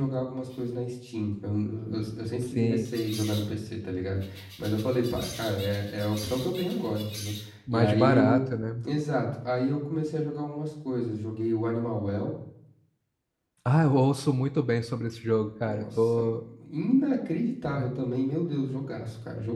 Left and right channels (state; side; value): identical; both; correlation 1.00